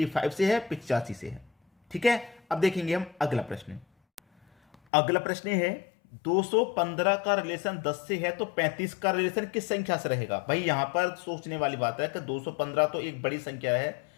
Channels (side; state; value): right; drops out; at 4.8 s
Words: से है, 85 से है। ठीक है, अब देखेंगे हम अगला प्रश्न। अगला प्रश्न है 215 का रिलेशन 10 से है तो 35 का रिलेशन किस संख्या से रहेगा। भाई यहां पर सोचने वाली बात है कि 215 तो एक बड़ी संख्या है,